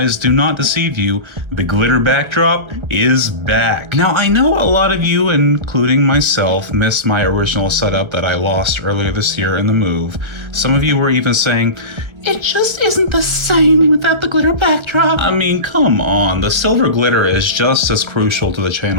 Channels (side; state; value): left; late; 1.6 ms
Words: do not deceive you. The glitter backdrop is back. Now I know a lot of you, including myself, missed my original setup that I lost earlier this year in the move. Some of you were even saying, it just isn't the same without the glitter backdrop. I mean, come on, the silver glitter is just as crucial to the